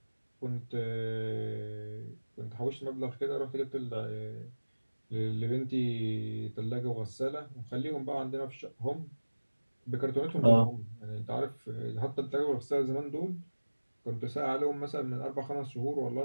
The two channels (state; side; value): inverted; both; correlation -1.00